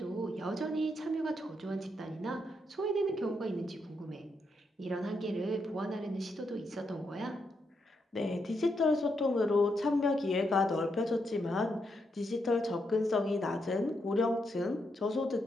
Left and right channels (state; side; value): normal; both; correlation 0.80